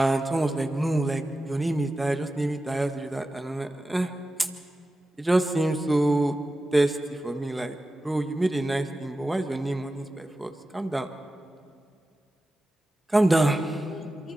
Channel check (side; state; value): both; normal; correlation 0.93